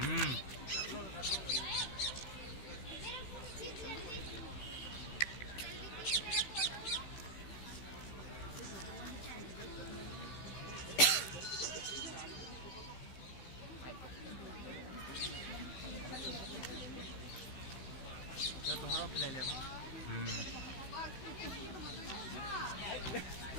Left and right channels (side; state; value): right; late; 16 ms